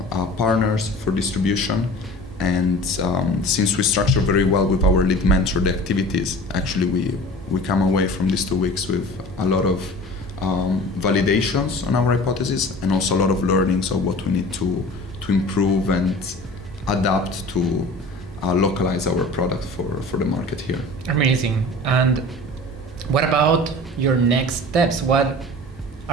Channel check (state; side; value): normal; both; correlation 0.40